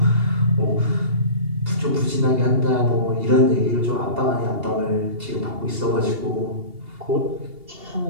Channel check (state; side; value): late; left; 2.8 ms